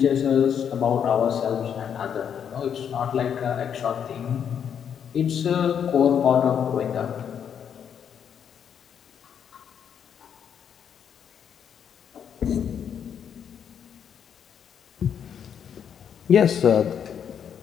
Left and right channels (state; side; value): quieter; right; 8.2 dB